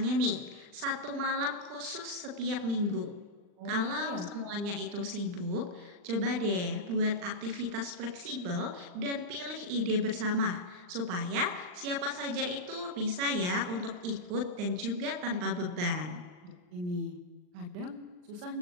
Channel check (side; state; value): left; late; 39 ms